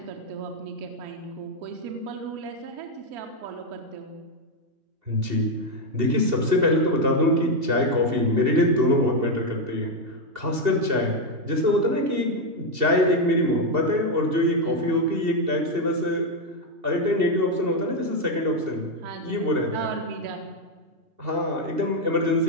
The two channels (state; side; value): late; left; 2.7 ms